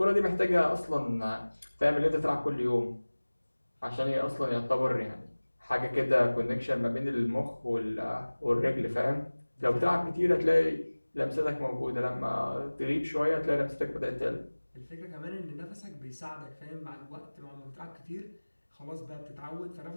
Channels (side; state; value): both; inverted; correlation -1.00